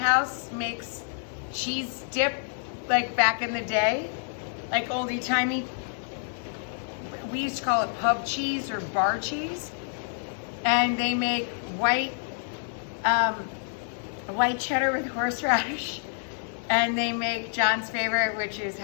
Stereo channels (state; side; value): silent; right; 59 dB below the other